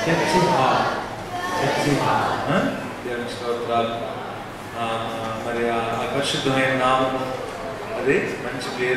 church hall, church hall. దేవుని స్తోత్రాలు. మరి ఆ పరిశుద్ధమైన నామము, అదే మంచి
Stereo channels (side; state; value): both; identical; correlation 1.00